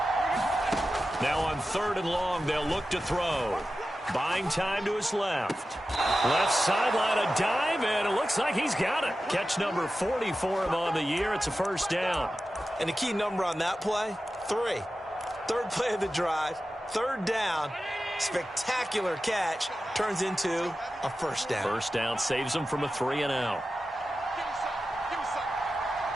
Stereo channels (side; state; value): both; normal; correlation 0.93